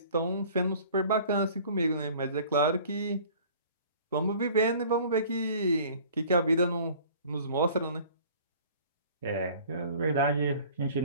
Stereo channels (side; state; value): both; inverted; correlation -0.49